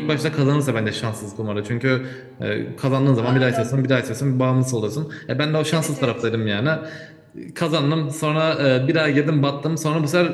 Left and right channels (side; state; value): both; identical; correlation 1.00